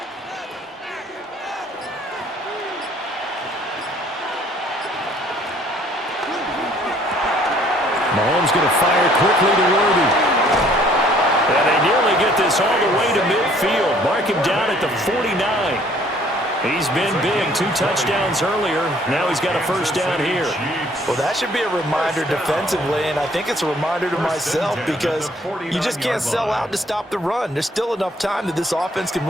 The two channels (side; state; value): both; normal; correlation 0.60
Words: Mahomes going to fire quickly to Worthy. And they nearly get this all the way to midfield. Mark him down at the 49. He's been big. 2 touchdowns earlier. Now he's got a first down here. Well, that should be a reminder defensively, and I think it's a reminder to myself because you just can't sell out to stop the run. There's still enough time that this offense can